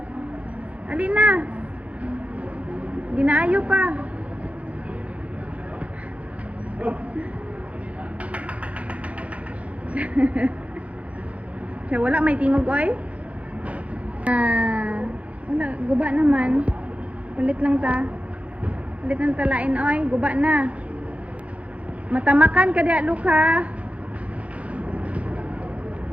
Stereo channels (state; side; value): late; left; 0.065 ms